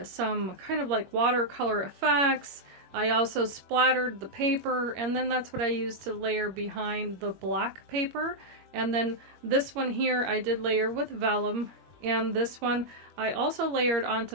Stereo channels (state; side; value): late; left; 21 ms